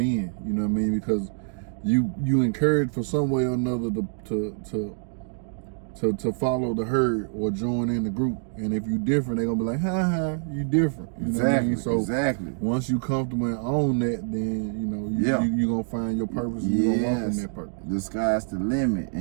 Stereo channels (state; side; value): silent; left; digital silence